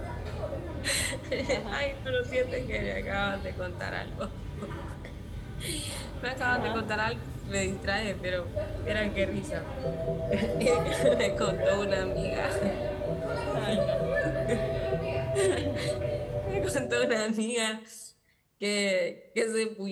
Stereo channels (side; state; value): both; identical; correlation 1.00